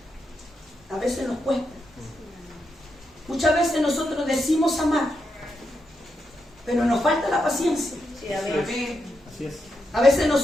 A veces nos cuesta. Muchas veces nosotros decimos amar, pero nos falta la paciencia. Amén. Así es. A veces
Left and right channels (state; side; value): normal; both; correlation 0.84